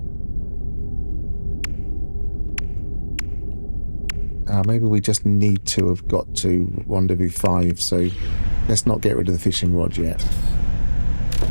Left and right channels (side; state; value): both; inverted; correlation -1.00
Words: Maybe we just need to have got to Rendezvous 5, so let's not get rid of the fishing rod yet.